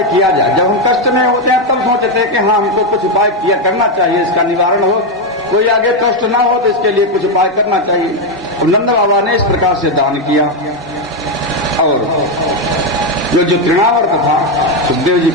किया जाए। जब हम कष्ट में होते हैं तब सोचते हैं कि हाँ हमको कुछ उपाय किया करना चाहिए, इसका निवारण हो, कोई आगे कष्ट ना हो तो इसके लिए कुछ उपाय करना चाहिए। और नंद बाबा ने इस प्रकार से दान किया। और जो तृणावर्त था, सुखदेव जी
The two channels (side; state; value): both; normal; correlation 0.05